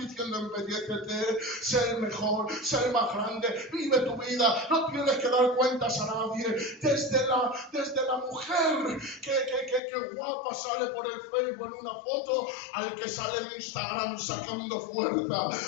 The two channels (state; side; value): drops out; right; at 9.8 s